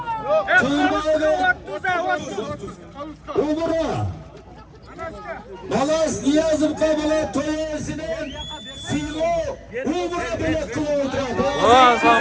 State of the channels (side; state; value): both; identical; correlation 1.00